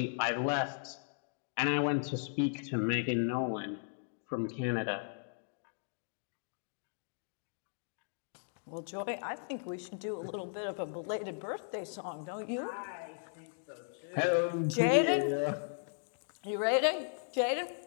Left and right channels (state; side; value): silent; right; digital silence